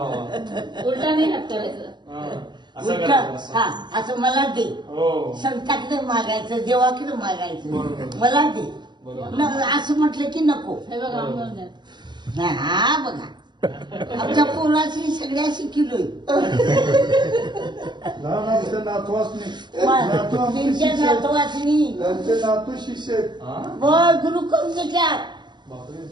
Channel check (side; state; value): left; late; 0.21 ms